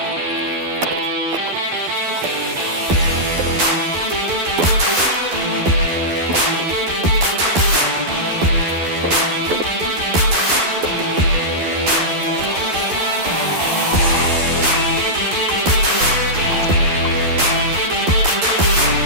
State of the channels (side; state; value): left; late; 12 ms